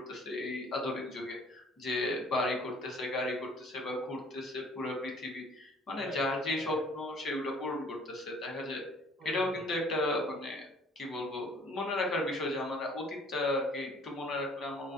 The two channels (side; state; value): both; normal; correlation 0.55